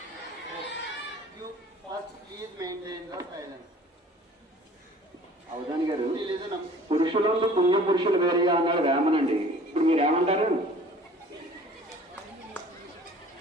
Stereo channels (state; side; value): normal; both; correlation 0.49